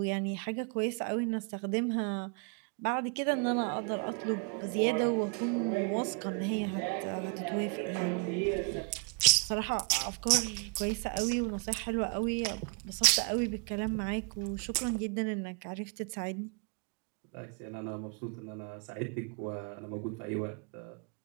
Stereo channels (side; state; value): left; quieter; 34.1 dB